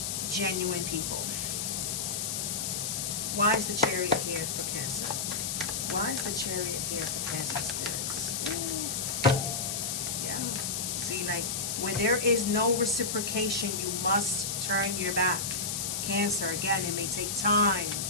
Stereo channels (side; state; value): left; noise; hiss, 1 dB below the sound